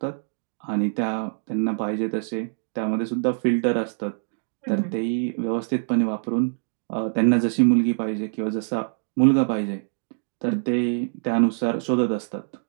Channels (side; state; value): left; silent; digital silence